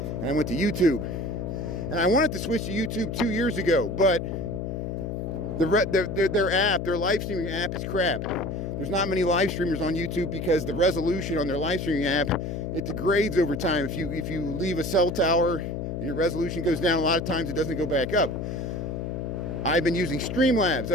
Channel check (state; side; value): noise; left; hum, 4 dB below the sound